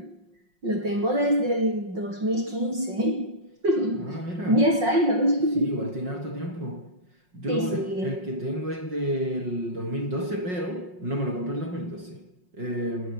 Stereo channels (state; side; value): late; left; 5.5 ms